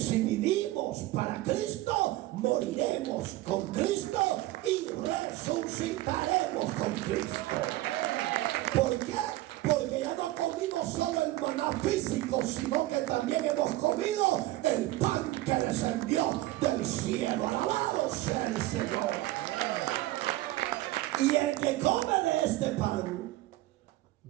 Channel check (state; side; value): quieter; left; 16.9 dB